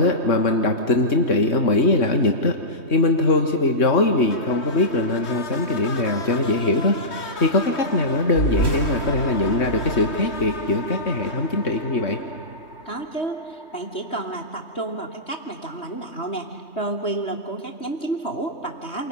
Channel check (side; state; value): right; late; 3.2 ms